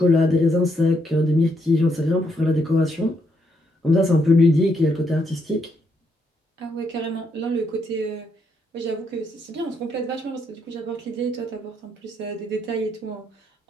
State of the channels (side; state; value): both; normal; correlation 0.76